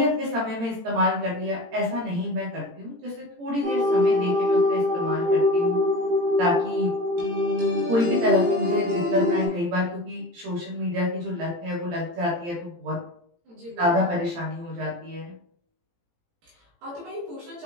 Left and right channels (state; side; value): late; left; 18 ms